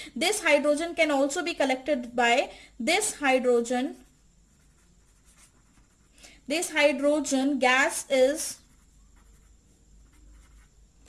this hydrogen can also be collected by, this hydrogen gas is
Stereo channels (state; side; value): identical; both; correlation 1.00